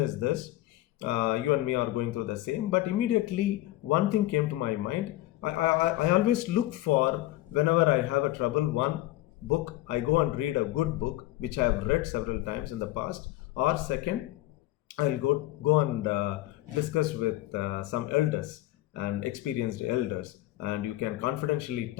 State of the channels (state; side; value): quieter; right; 16.2 dB